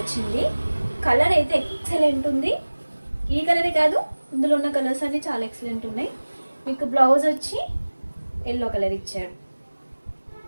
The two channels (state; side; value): inverted; both; correlation -1.00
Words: కలర్ అయితే ఎక్సలెంట్ ఉంది. ఈ కలరే కాదు, ఇందులో ఉన్న కలర్స్ అన్నీ చాలా ఎక్సలెంట్ ఉన్నాయి. మీకు బ్లౌజ్ వచ్చి ఎల్లో కలర్ ఇచ్చాడు.